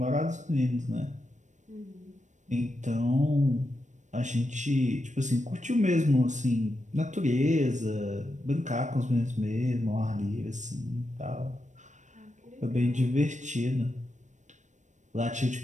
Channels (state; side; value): late; left; 0.35 ms